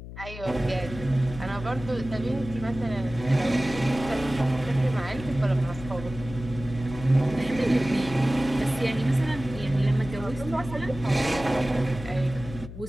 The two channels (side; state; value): left; noise; hum, 12 dB below the sound